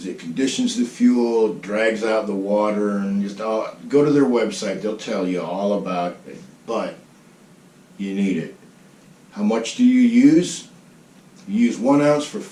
it conditions the fuel, drags out the water, and just go to their website. They'll tell you all about it, but you need it. How much do you use? You use 1 ounce for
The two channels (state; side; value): identical; both; correlation 1.00